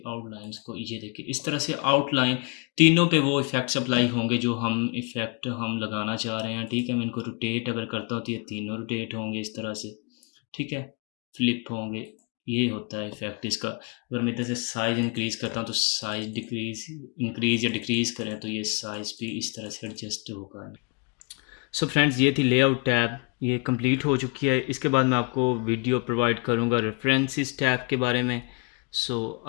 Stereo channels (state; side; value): quieter; right; 31.3 dB